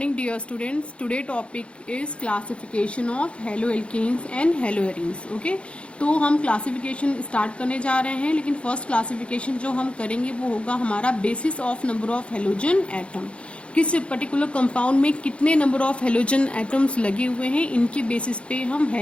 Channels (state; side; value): late; right; 0.059 ms